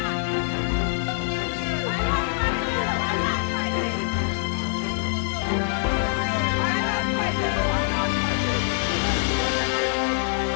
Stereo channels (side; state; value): right; silent; 62 dB below the other